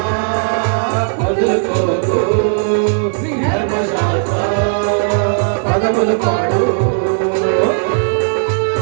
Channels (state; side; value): silent; left; digital silence